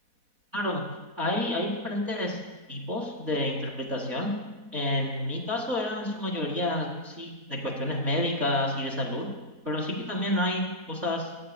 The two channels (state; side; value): late; left; 4.1 ms